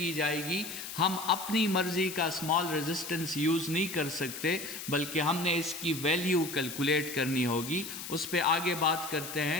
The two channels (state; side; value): noise; left; hiss, 9 dB below the sound